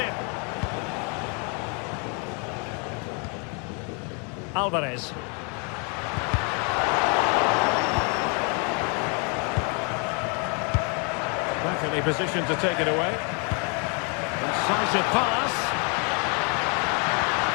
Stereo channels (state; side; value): quieter; right; 35.6 dB